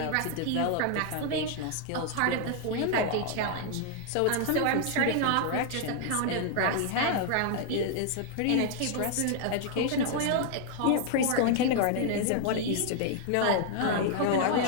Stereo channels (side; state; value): both; different; correlation 0.00